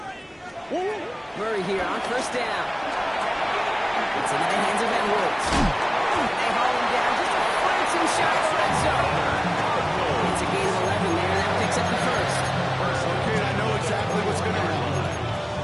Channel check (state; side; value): identical; both; correlation 1.00